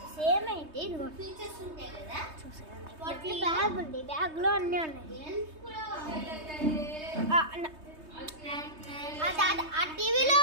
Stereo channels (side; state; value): left; late; 3.2 ms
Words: సేమ్ అయితే ఇదిగో ఫీచర్స్ ఉంటాయి కదా, చూసాను. బ్యాగ్ ఉంది, బ్యాగ్లో అన్నీ ఉన్నాయి. ఆ టీవీలో